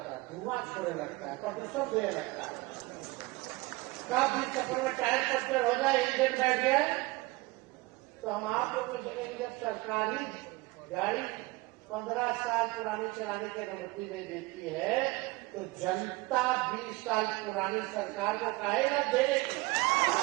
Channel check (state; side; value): quieter; left; 22.1 dB